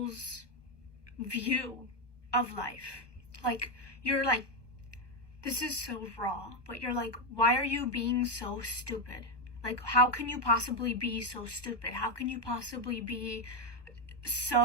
view of life. Like, you're like, this is so raw, but you're like, why are you being so stupid? Like, how can you possibly be so stupid? How can you possibly be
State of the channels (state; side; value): late; right; 1.2 ms